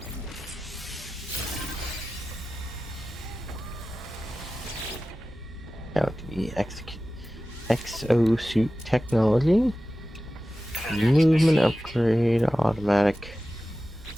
Out to be exosuit technology. Movement upgrade, automatic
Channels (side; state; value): both; normal; correlation 0.95